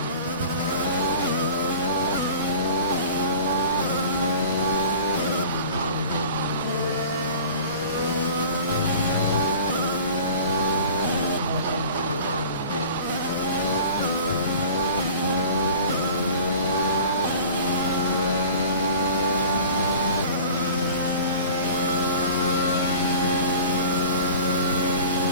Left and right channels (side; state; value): both; inverted; correlation -0.41